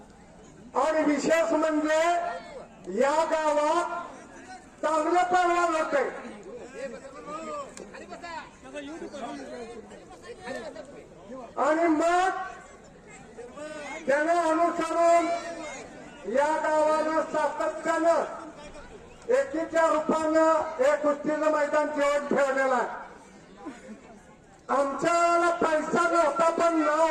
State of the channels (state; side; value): identical; both; correlation 1.00